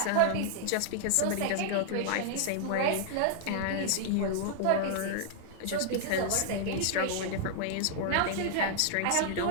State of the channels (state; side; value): different; both; correlation -0.01